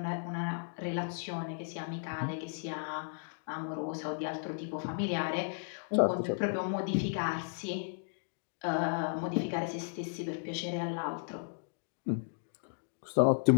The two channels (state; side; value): silent; right; digital silence